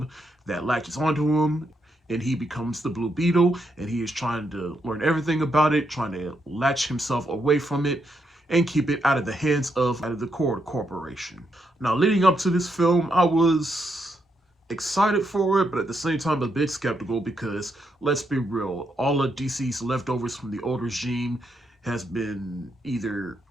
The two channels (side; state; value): both; normal; correlation 0.79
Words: that latches onto him, and he becomes the Blue Beetle, and he is trying to learn everything about it, trying to latch himself away from it, and keep it out of the hands of the Cord Corporation. Now, leading up to this film, I was excited for it, but at the same time a bit skeptical, because let's be real, all of DC's leftovers from the old regime has been either